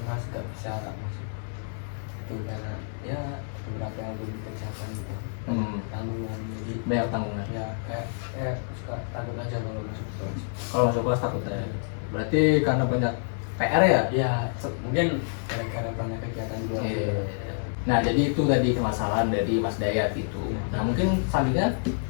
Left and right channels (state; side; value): silent; right; 59 dB below the other